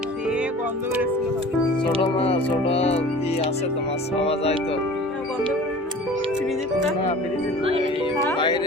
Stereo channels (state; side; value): normal; both; correlation 0.43